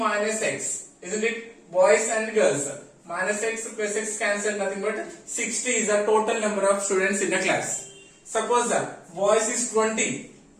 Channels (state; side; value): identical; both; correlation 1.00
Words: X. Isn't it? Boys and girls. Minus X plus X cancel, nothing but 60 is the total number of students in the class. Suppose boys is 20,